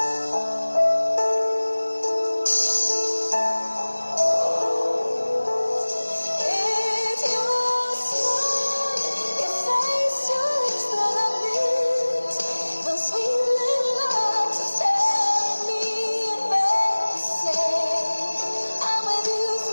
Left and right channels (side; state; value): both; inverted; correlation -1.00